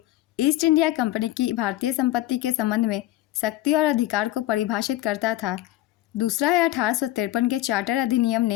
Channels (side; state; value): right; quieter; 15.3 dB